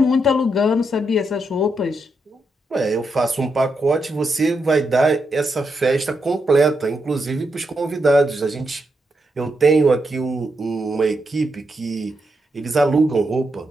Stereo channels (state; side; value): normal; both; correlation 0.82